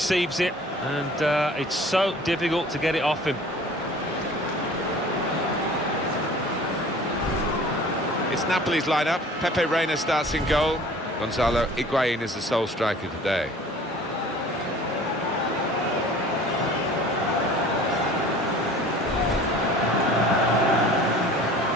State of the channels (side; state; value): both; normal; correlation 0.46